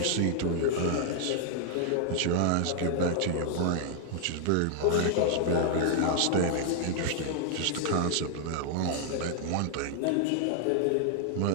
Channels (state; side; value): different; both; correlation 0.00